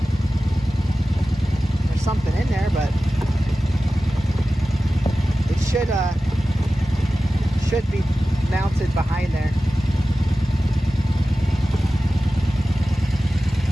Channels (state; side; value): normal; both; correlation 0.95